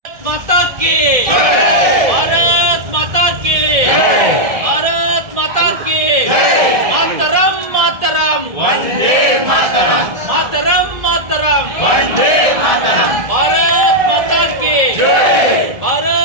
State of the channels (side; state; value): left; late; 1.7 ms